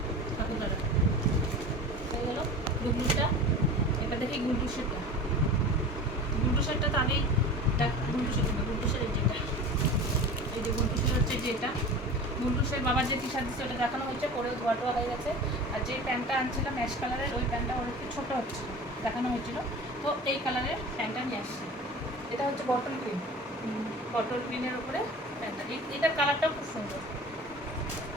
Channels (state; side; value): normal; both; correlation 0.36